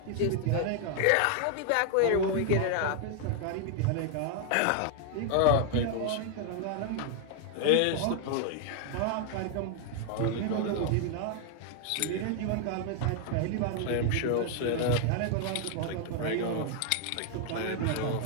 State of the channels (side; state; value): both; different; correlation 0.00